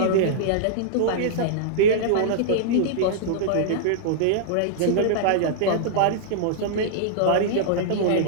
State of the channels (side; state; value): both; different; correlation -0.02